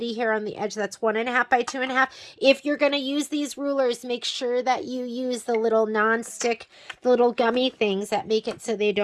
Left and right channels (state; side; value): identical; both; correlation 1.00